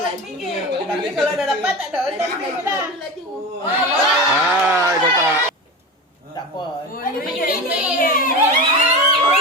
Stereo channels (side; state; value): both; normal; correlation 0.26